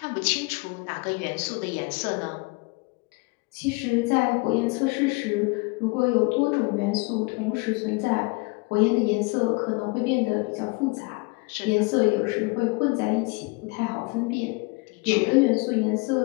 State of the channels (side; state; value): right; quieter; 27.9 dB